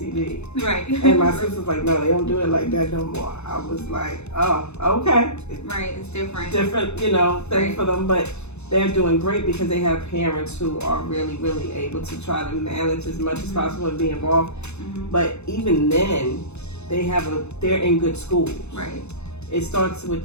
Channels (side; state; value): right; late; 0.81 ms